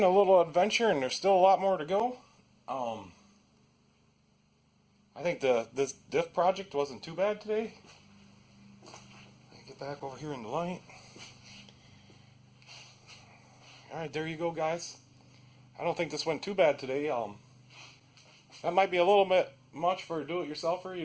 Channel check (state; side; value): identical; both; correlation 1.00